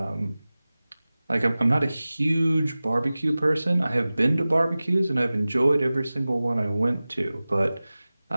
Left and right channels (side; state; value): both; inverted; correlation -0.97